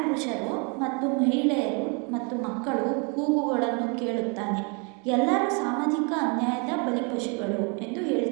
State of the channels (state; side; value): quieter; left; 34.7 dB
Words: ಮತ್ತು ಮಹಿಳೆಯರು ಮತ್ತು ಮಕ್ಕಳು ಕೂಗುಗಳನ್ನು ಕೇಳುತ್ತಾನೆ. ಎಲ್ಲರೂ ಸಾಮಾಜಿಕ ಅನ್ಯಾಯದ ಬಲಿಪಶುಗಳು ಎಂದು